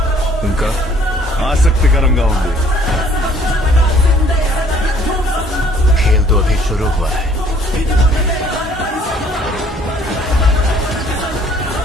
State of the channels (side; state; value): both; normal; correlation 0.59